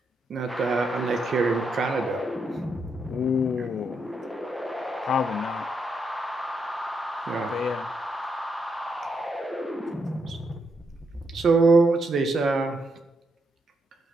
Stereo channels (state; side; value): normal; both; correlation 0.79